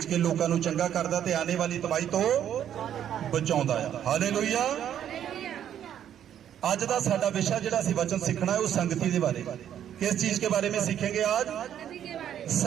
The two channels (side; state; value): left; quieter; 10.1 dB